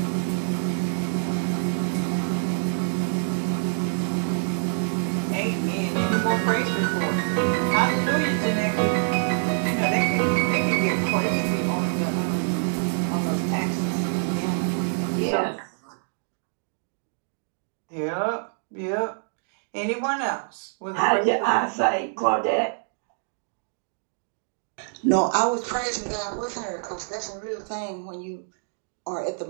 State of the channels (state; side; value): silent; left; digital silence